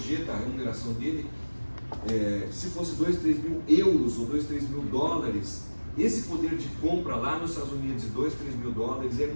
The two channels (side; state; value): both; inverted; correlation -1.00